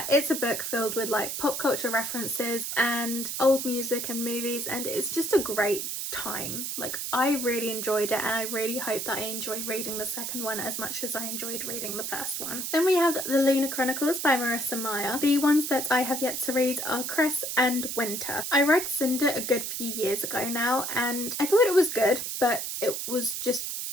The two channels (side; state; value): right; noise; hiss, 4 dB below the sound